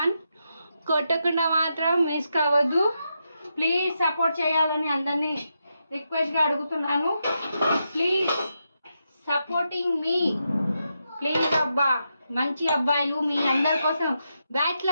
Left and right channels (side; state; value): both; inverted; correlation -0.85